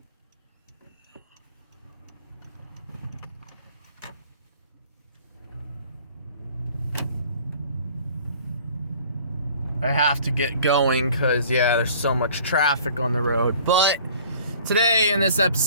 I have to get going because, there's so much traffic on the road. But today in this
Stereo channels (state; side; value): inverted; both; correlation -0.50